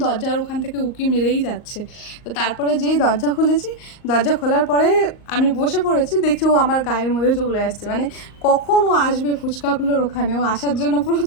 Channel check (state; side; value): late; right; 38 ms